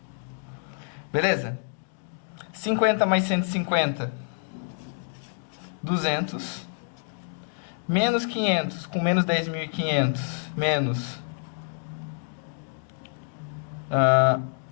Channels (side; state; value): right; silent; 57 dB below the other